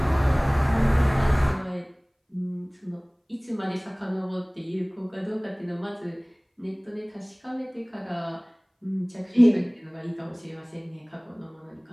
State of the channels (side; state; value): both; identical; correlation 1.00